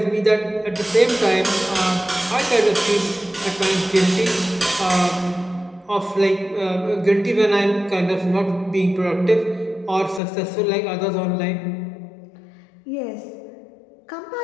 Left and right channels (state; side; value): drops out; right; at 10.2 s